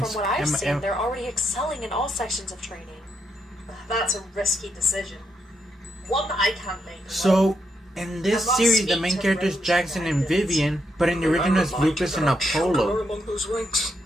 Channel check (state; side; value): normal; both; correlation 0.80